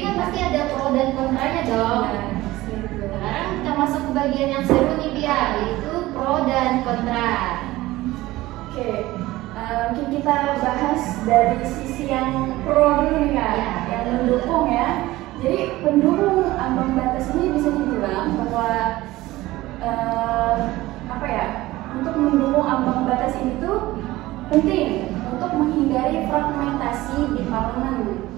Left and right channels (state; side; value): quieter; left; 17.8 dB